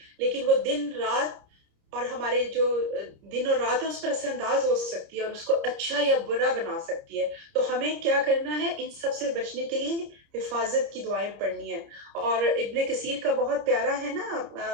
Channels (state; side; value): late; left; 30 ms